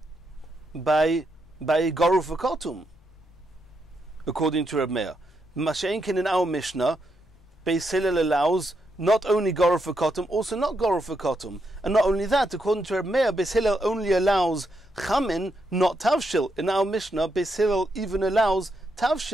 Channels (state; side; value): noise; left; rumble, 29 dB below the sound